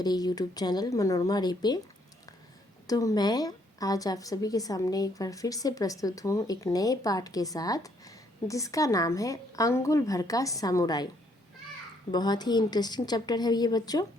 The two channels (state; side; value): normal; both; correlation 0.69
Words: यूट्यूब चैनल मनोरमा रे पे। तो मैं आज आप सभी के सामने एक बार फिर से प्रस्तुत हूँ एक नए पाठ के साथ, जिसका नाम है अंगुल भर का सामुराई। बहुत ही इंटरेस्टिंग चैप्टर है ये बच्चों।